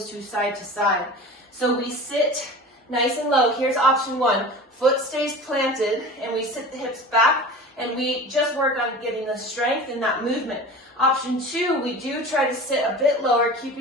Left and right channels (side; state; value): both; normal; correlation 0.36